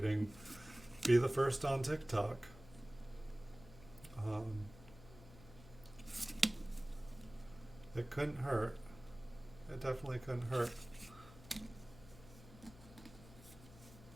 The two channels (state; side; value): noise; left; hum, 19 dB below the sound